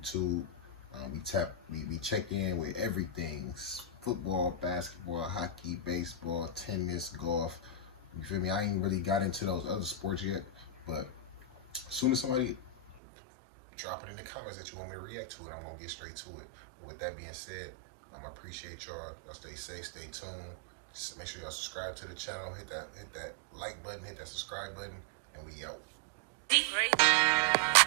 We check in with everything: football, basketball, hockey, baseball, tennis, golf. You feel me? I ain't really got into those other sports yet, but as soon as somebody drop it in the comments that you want me to react to it, I'm gonna get straight to it. But with that being said, I appreciate y'all. Y'all stay safe, stay tuned. Make sure y'all subscribe to the channel. Hit that like button. Hit that subscribe button. And we out. Great.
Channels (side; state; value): left; drops out; at 13.0 s